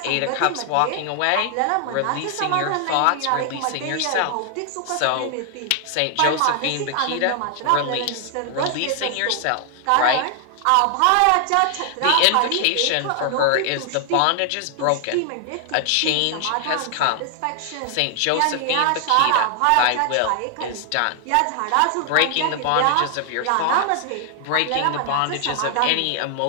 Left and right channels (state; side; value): different; both; correlation 0.00